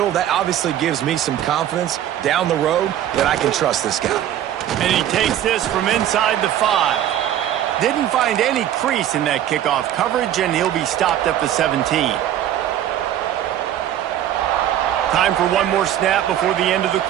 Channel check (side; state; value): left; quieter; 11.4 dB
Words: that obviously gives me some confidence down the road that I can trust this guy. And he takes this from inside the 5. Didn't find any crease in that kickoff coverage, and he'll be stopped at the 17. Time for one more snap before the end of the